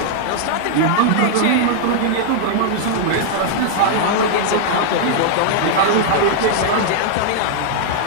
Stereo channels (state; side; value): different; both; correlation -0.01